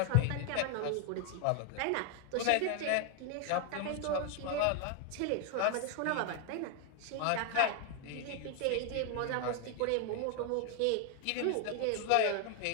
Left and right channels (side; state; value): both; different; correlation 0.00